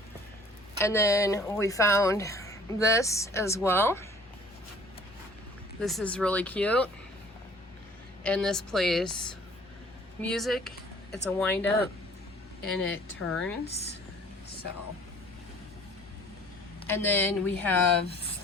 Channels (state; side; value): normal; both; correlation 0.52